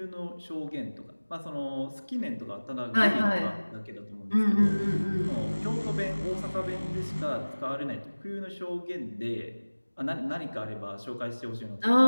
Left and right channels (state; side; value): inverted; both; correlation -1.00